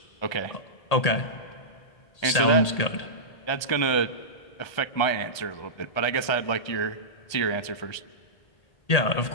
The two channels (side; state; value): right; late; 1.8 ms